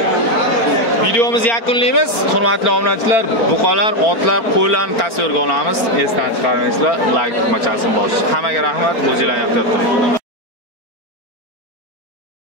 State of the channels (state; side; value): late; right; 4.4 ms